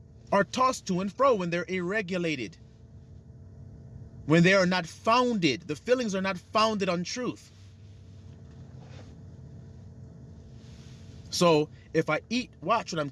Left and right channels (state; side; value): identical; both; correlation 1.00